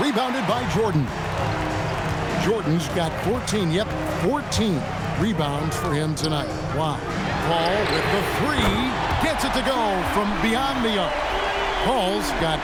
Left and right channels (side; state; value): both; identical; correlation 1.00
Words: rebounded by Jordan. Jordan's got 14. Yep, 14 rebounds for him tonight. Wow. Paul with the 3. Gets it to go from beyond the arc. Paul's got